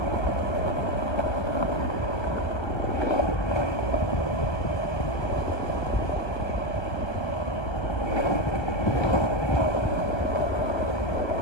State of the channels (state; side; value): late; right; 1.2 ms